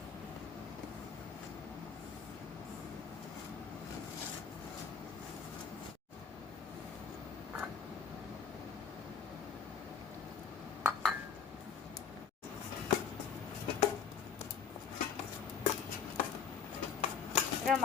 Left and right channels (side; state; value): right; quieter; 6.8 dB